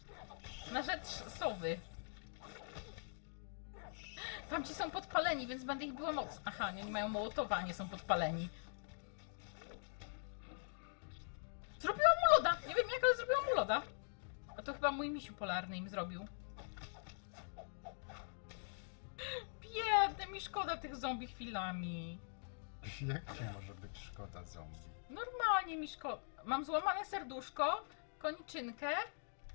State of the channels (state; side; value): silent; right; digital silence